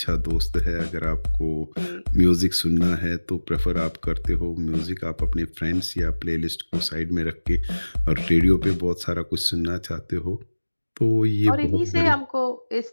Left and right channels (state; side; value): inverted; both; correlation -1.00